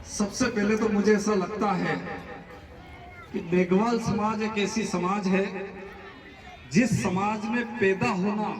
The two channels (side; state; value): both; identical; correlation 1.00